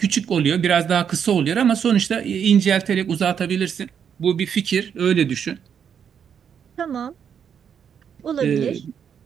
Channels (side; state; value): left; quieter; 7.8 dB